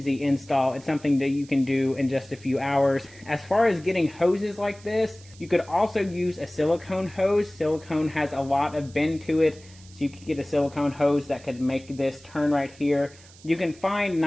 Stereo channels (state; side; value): noise; right; hiss, 23 dB below the sound